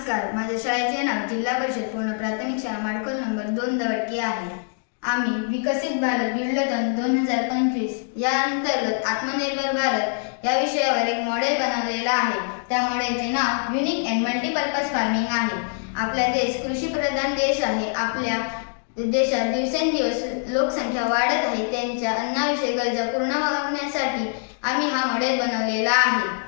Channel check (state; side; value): silent; right; 63 dB below the other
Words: माझ्या शाळेचे नाव जिल्हा परिषद पूर्ण प्राथमिक शाळा माडखोल नंबर 2 दवडकी आहे. आम्ही विकसित भारत बिल्डोथॉन 2025 या अंतर्गत आत्मनिर्भर भारत या विषयावर एक मॉडेल बनवलेला आहे. त्या मॉडेलचे नाव युनिक अँड मल्टीपर्पज फार्मिंग आहे. आपला देश कृषीप्रधान देश आहे. आपल्या देशात दिवसेंदिवस लोकसंख्या वाढत आहे. त्यांच्या अन्नाविषयी गरजा पूर्ण होण्यासाठी आम्ही हा मॉडेल बनवलेला आहे.